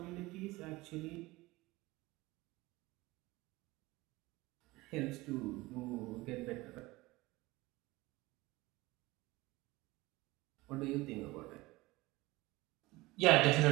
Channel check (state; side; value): quieter; left; 20.8 dB